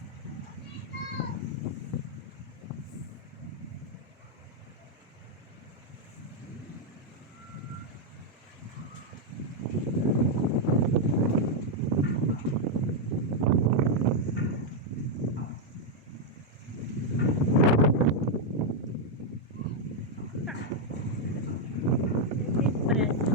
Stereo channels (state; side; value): normal; both; correlation -0.01